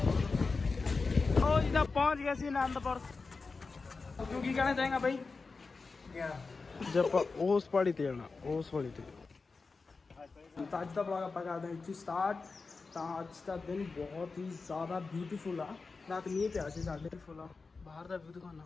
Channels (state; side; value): quieter; right; 4.2 dB